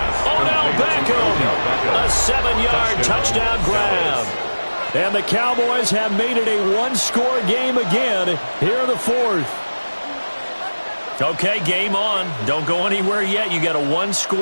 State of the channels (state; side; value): inverted; both; correlation -1.00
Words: Odell Beckham. A 7-yard touchdown grab. And the Cowboys have made it a 1-score game again here in the 4th. Okay, game on. Don't go anywhere yet. You got a